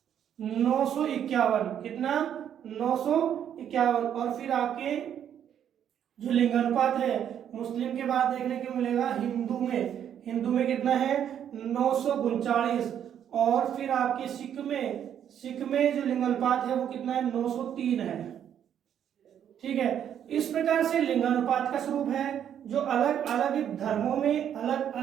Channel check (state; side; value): quieter; left; 9.4 dB